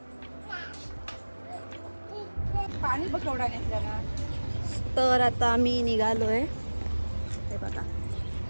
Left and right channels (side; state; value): both; inverted; correlation -1.00